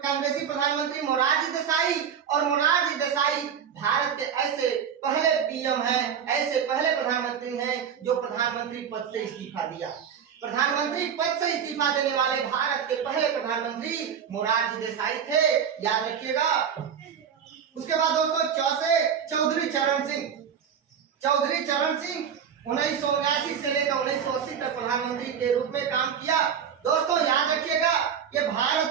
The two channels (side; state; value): left; quieter; 7.8 dB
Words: कांग्रेसी प्रधानमंत्री मोरारजी देसाई और मोरारजी देसाई भारत के ऐसे पहले पीएम हैं, ऐसे पहले प्रधानमंत्री हैं जो प्रधानमंत्री पद से इस्तीफा दिया। प्रधानमंत्री पद से इस्तीफा देने वाले भारत के पहले प्रधानमंत्री मोरारजी देसाई थे, याद रखिएगा। उसके बाद दोस्तों चौधरी चरण सिंह 1979 से लेकर 1980 तक प्रधानमंत्री के रूप में काम किया। दोस्तों याद रखिएगा, ये